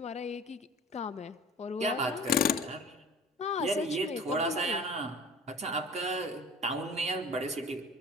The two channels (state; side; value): normal; both; correlation 0.43